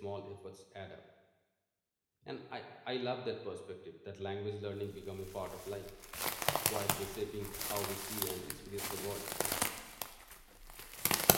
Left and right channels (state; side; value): identical; both; correlation 1.00